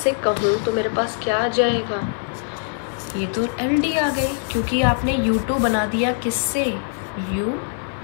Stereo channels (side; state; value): right; silent; 60 dB below the other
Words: कहूँ तो मेरे पास क्या आ जाएगा, ये तो एल डी आ गई, क्योंकि आपने u2 बना दिया किससे,